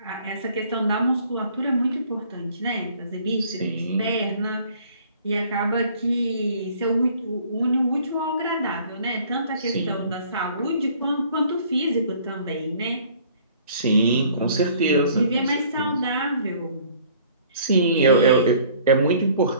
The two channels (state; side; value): inverted; both; correlation -0.55